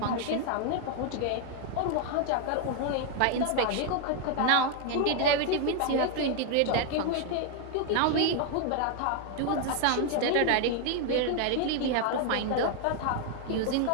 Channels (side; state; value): both; different; correlation 0.00